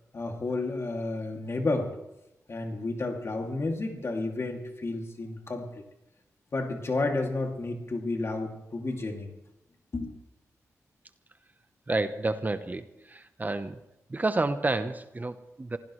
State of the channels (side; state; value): both; normal; correlation 0.86